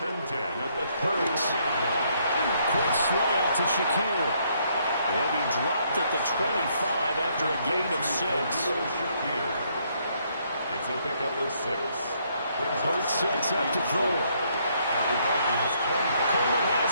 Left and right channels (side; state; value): both; inverted; correlation -0.70